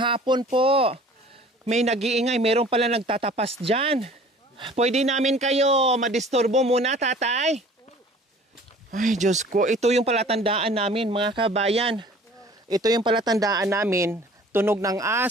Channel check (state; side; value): normal; both; correlation 0.49